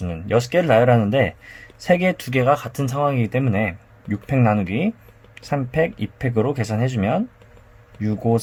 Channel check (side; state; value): both; identical; correlation 1.00